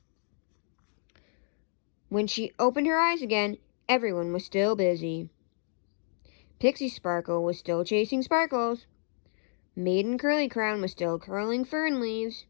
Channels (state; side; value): silent; right; digital silence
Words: When she opened her eyes again, everyone was still busy. Pixie Sparkle was still chasing sparkles. Maiden Curly Crown was still curling fern leaves.